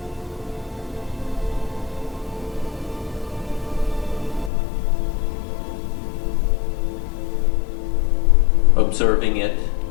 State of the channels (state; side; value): drops out; right; at 4.5 s